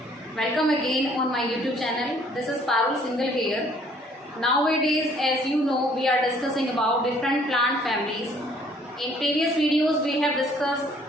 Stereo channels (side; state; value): both; normal; correlation 0.60